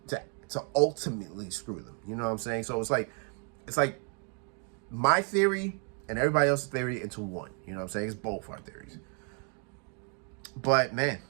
ultimately screw them. You know what I'm saying? So it's like my theory and everybody else's theory into one. You know what I'm saying? It's both our theories. But man,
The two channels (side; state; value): left; quieter; 39.7 dB